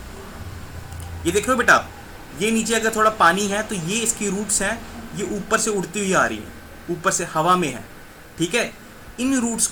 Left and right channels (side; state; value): both; identical; correlation 1.00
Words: ये देख रहे हो बेटा आप, ये नीचे अगर थोड़ा पानी है तो ये इसकी रूट्स हैं, ये ऊपर से उड़ती हुई आ रही हैं, ऊपर से हवा में है, ठीक है। इन रूट्स